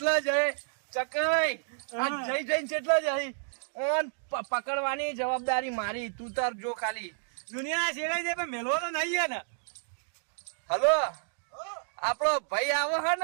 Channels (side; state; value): left; silent; digital silence